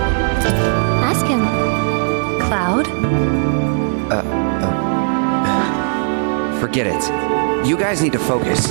Ask him. Cloud? Forget it. You guys need to focus.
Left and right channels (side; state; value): left; silent; digital silence